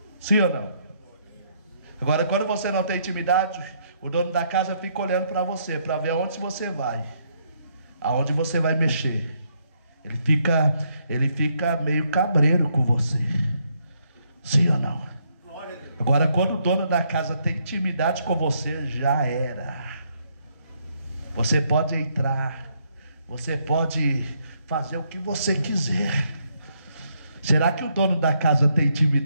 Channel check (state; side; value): inverted; both; correlation -0.73